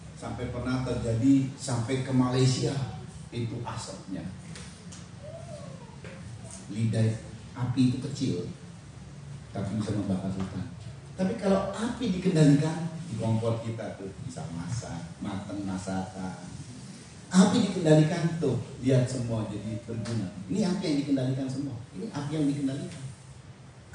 Sampai pernah terjadi sampai ke Malaysia itu asapnya. Lidah api itu kecil, tapi bisa membakar hutan. Tapi kalau api dikendalikan, di kompor kita tuh bisa masak, mateng masakan. Api dikendalikan tuh, lihat semua jadi berguna. Ini api yang dikendalikan semua. Ini api yang dikendalikan.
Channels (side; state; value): both; identical; correlation 1.00